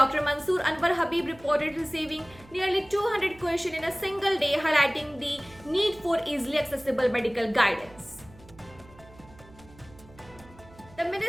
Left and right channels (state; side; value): noise; right; hum, 23 dB below the sound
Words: Mansoor Anwar Habib reported receiving nearly 200 questions in a single day, highlighting the need for easily accessible medical guidance. The